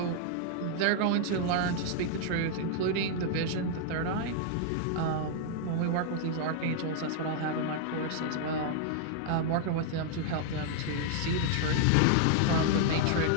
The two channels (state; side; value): different; both; correlation 0.00